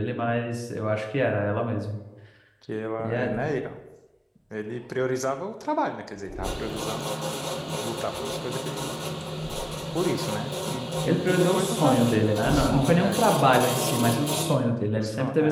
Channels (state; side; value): identical; both; correlation 1.00